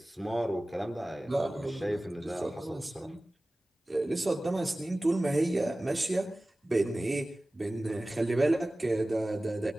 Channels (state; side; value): normal; both; correlation 0.97